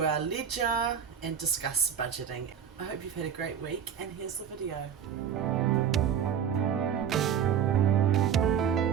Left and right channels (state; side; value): quieter; left; 8.2 dB